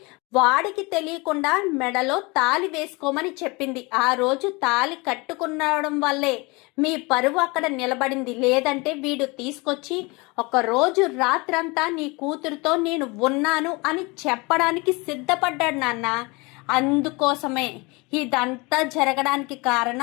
వాడికి తెలియకుండా మెడలో తాళి వేసుకోమని చెప్పింది. ఆ రోజు తాళి కట్టుకునడం వల్లే మీ పరువు అక్కడ నిలబడింది, లేదంటే వీడు తీసుకొచ్చి ఒక రోజు రాత్రంతా నీ కూతురుతో నేను ఉన్నాను అని చెప్పడానికి సిద్ధపడ్డాడు నాన్న. అందుకోసమే ఇదంతా జరగడానికి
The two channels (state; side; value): quieter; right; 26.2 dB